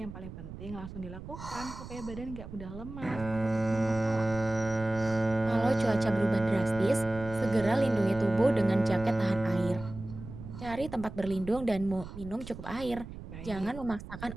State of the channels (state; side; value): noise; right; rumble, 12 dB below the sound